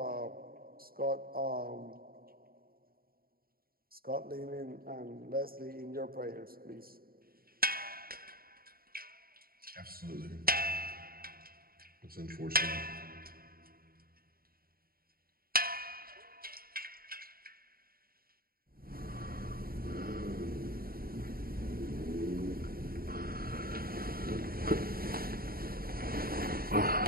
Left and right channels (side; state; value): left; late; 0.43 ms